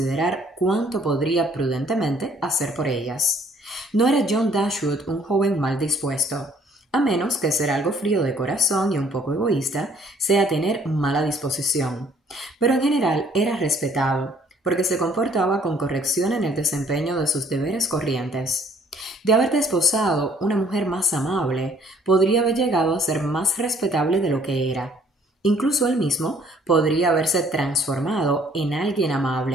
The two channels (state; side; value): normal; both; correlation 0.60